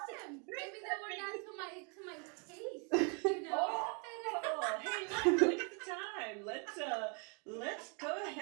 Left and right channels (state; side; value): quieter; left; 36.4 dB